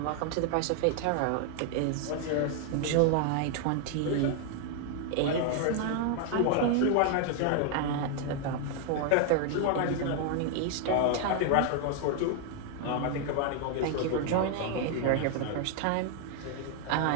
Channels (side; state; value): both; different; correlation 0.00